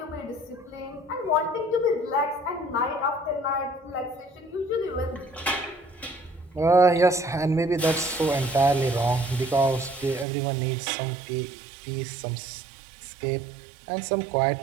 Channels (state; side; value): drops out; left; at 10.2 s